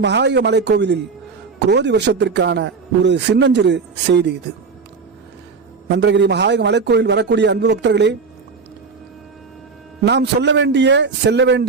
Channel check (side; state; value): left; quieter; 4.9 dB